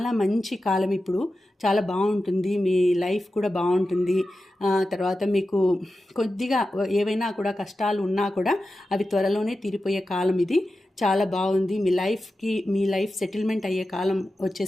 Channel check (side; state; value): both; normal; correlation 0.92